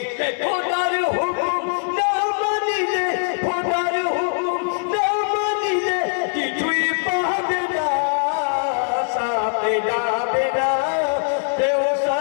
খোদার হুকুম না মানিলে খোদার হুকুম না মানিলে কিছুই পাবে না সাথে যাবে না কেউ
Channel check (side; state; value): right; silent; digital silence